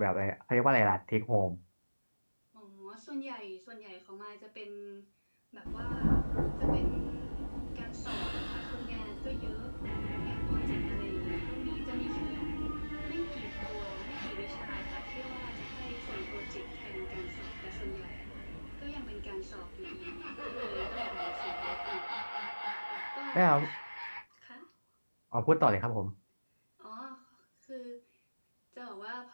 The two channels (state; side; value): inverted; both; correlation -1.00